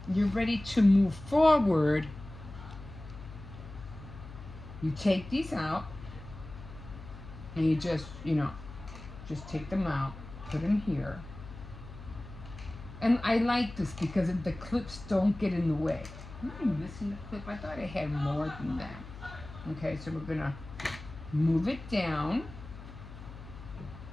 you're ready to move forward, you take these out, and you just, you know, just take them out, put them here. And I like this because the clips don't get in the way. Am I missing the clip? I thought I had more than that. Okay, so we're gonna move it down.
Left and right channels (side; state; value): left; noise; hum, 14 dB below the sound